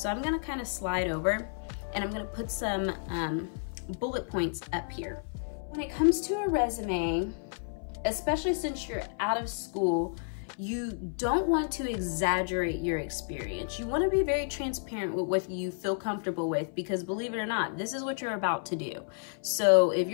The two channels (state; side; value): silent; right; 57 dB below the other